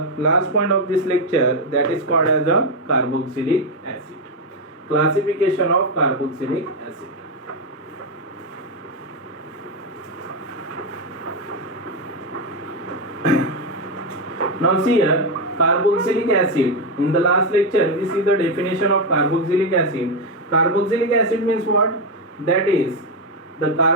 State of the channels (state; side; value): normal; both; correlation 0.06